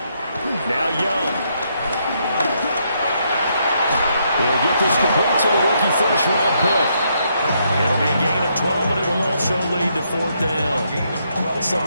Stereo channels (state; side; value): inverted; both; correlation -0.75